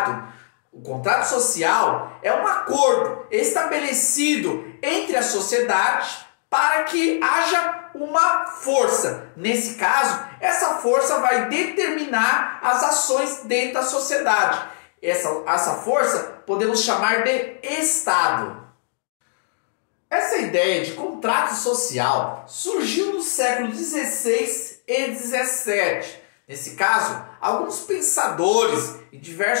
O contrato social é um acordo estabelecido entre a sociedade para que haja uma força. Nesse caso, essa força vai determinar as ações dentro da sociedade. Essa força podemos chamar de Estado. Essa ideia de contrato social surgiu no século XVI e XVII. Nesse caso, alguns pensadores em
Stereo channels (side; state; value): right; silent; digital silence